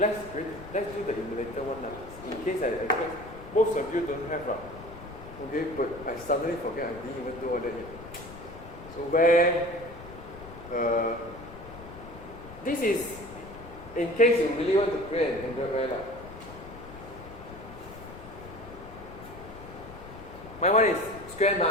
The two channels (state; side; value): noise; left; rumble, 15 dB below the sound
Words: do the emulator one in case most of you don't have. Okay, but I suddenly forget I didn't even do all that yet. So where this is in case you really want to create an Android Wear. My one is square